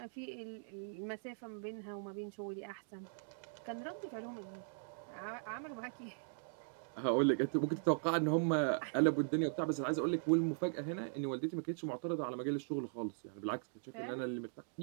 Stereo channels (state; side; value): silent; left; digital silence